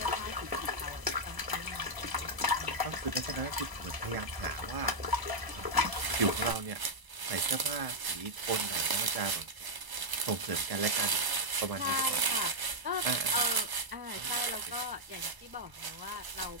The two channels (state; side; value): late; left; 1.0 ms